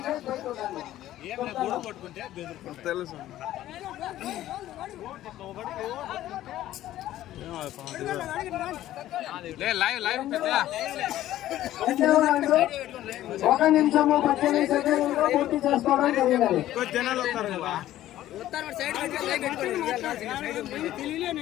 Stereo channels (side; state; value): right; quieter; 13.8 dB